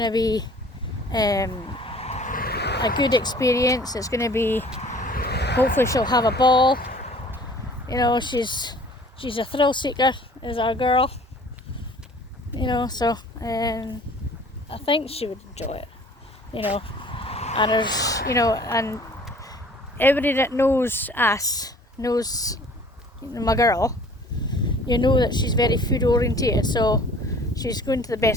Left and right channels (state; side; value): normal; both; correlation 0.51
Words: to be a good experience. It's going to be, hopefully she'll have a ball. You know, she's a thrill seeker, is our girl. You know, so I think she would enjoy it. You know, and there's, you know, and everybody that knows us knows my girl. You know that she's very food orientated, so she's going to the